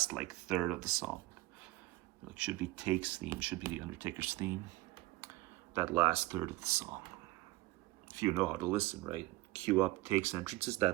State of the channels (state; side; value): quieter; left; 19.0 dB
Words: third of the song. Should be Take's theme, should be the Undertaker's theme. That last third of the song. If you know how to listen, right? Cue up Take's entrances,